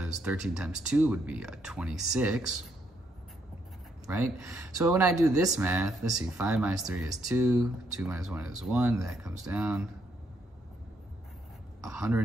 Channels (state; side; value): normal; both; correlation 0.74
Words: 13 times 2 would be a 26, right? So when I do this math, let's see, 5 minus 3 is 2, 2 minus 1 is 1, that comes down.